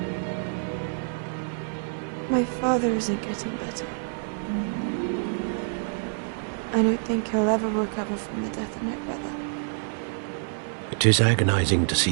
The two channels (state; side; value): silent; left; digital silence